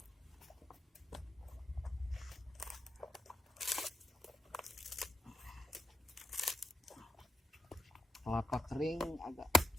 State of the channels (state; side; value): normal; both; correlation 0.84